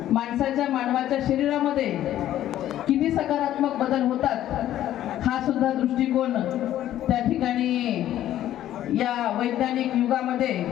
मानवाच्या शरीरामध्ये किती सकारात्मक बदल होतात हा सुद्धा दृष्टिकोन त्या ठिकाणी या वैज्ञानिक युगामध्ये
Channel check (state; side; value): quieter; right; 12.6 dB